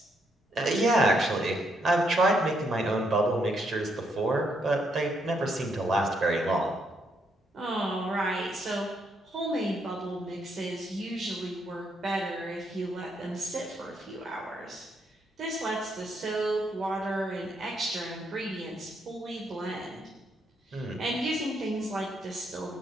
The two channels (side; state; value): both; normal; correlation 0.75